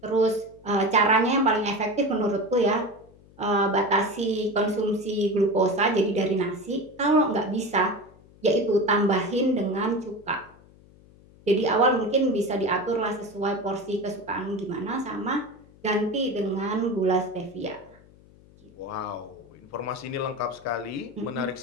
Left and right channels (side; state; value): left; noise; hum, 25 dB below the sound